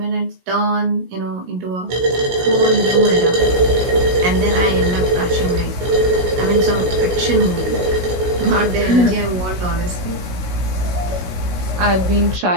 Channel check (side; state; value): left; late; 16 ms